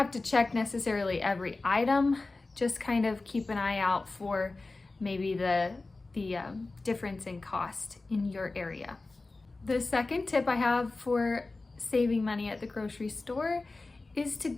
to check necessarily every item, just kind of keep an eye out for maybe the difference in cost in your area. The second tip I have for saving money at the grocery store is to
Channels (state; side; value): quieter; right; 3.4 dB